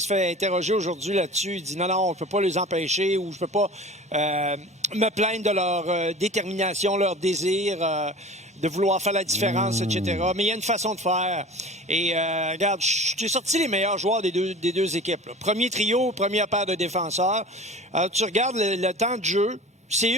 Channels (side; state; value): both; normal; correlation 0.39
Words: se fait interroger aujourd'hui là-dessus. Il dit non, on ne peut pas les empêcher ou je ne peux pas me plaindre de leur détermination, leur désir de vouloir faire la différence, etc. Mais il y a une façon de faire. Et regarde, j'ai sorti les meilleurs joueurs des deux équipes. Là. Premier trio, première paire de défenseurs. Alors, tu regardes le temps de jeu, c'est